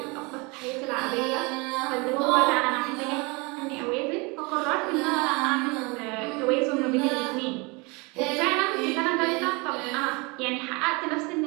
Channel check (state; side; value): quieter; left; 27.9 dB